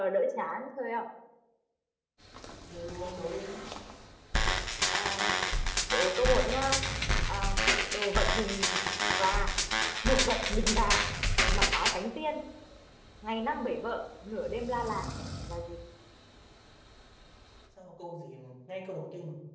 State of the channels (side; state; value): both; identical; correlation 1.00